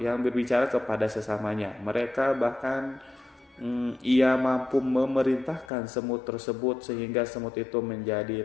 kepada sesamanya. Mereka bahkan ia mampu memerintahkan semut tersebut sehingga semut itu menjadi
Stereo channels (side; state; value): right; drops out; at 5.7 s